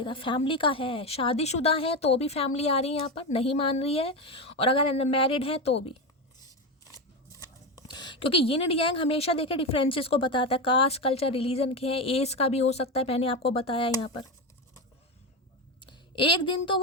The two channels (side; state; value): both; normal; correlation 0.16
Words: रहा, फैमिली का है, शादीशुदा है तो भी फैमिली आ रही है यहाँ पर, नहीं मान रही है, और अगर मैरिड है तो भी, क्योंकि यिन एंड यांग हमेशा देखे डिफरेंसेस को बताता है, कास्ट, कल्चर, रिलीजन के हैं, एज का भी हो सकता है, मैंने आपको बताया यहाँ पर। एक दिन तो